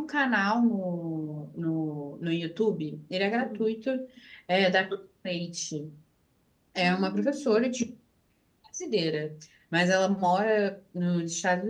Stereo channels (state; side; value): identical; both; correlation 1.00